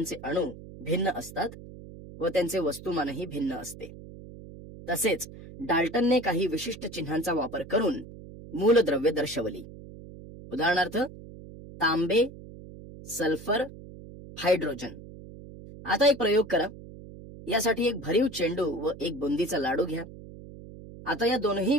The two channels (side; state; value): right; noise; hum, 16 dB below the sound